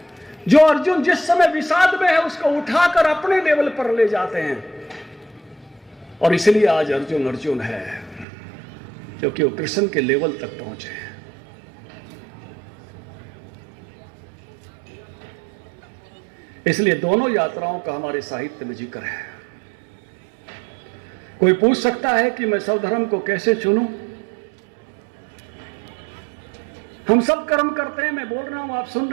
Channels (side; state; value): left; drops out; at 8.2 s